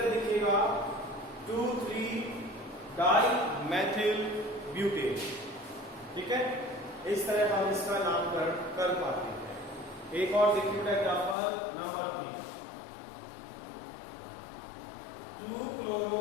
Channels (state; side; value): drops out; right; at 11.4 s